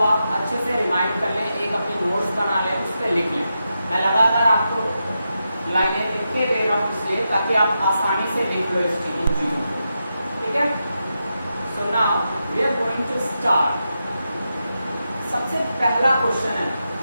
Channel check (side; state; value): both; inverted; correlation -0.87